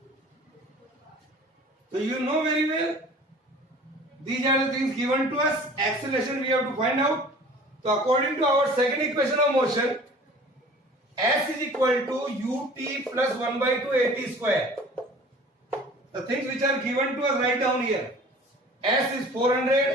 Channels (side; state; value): both; normal; correlation 0.46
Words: So you know very well. These are the things given to us. Acceleration we have to find out. So according to our second equation of motion, S is equal to ut plus 1 by 2 at square. The things which are given to us write down here. S is